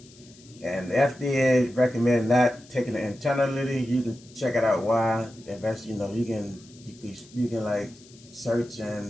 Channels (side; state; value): left; noise; hiss, 24 dB below the sound